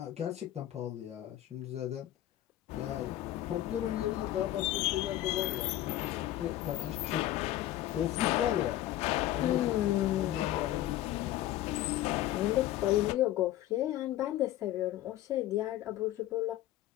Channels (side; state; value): right; quieter; 14.0 dB